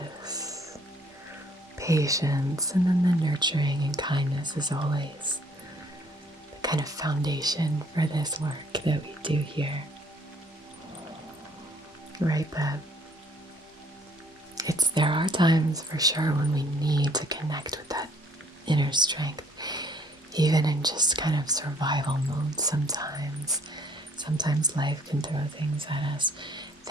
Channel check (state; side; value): normal; both; correlation 0.62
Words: patience, and then the nurturing and kindness is always the kind of foundation for this work that we do here. Right, but there are times for sure when we need to connect with that inner strength, even in just kind of survival mode sometimes. Sometimes life can throw things at us